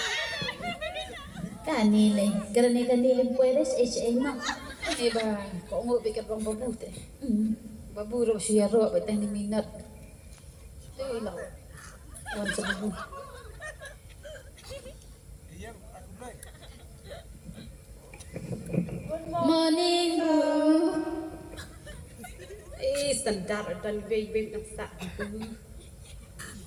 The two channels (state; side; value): identical; both; correlation 1.00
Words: Kani le, kerana kani le puedes HINREI mak. Ni ba, ko ngo be kat bang babu teh. Babu ro suya ro be tang ni minot. Tu lah. Wan sebu. Morning bu. Standar dan wei nang sa.